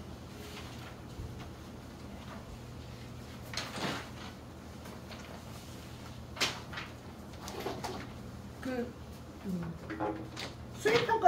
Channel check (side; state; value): both; identical; correlation 1.00